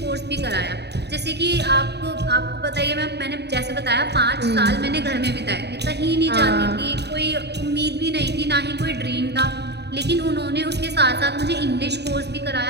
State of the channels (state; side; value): late; left; 0.49 ms